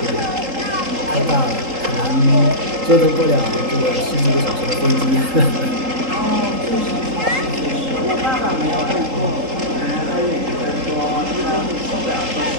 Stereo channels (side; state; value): left; late; 3.8 ms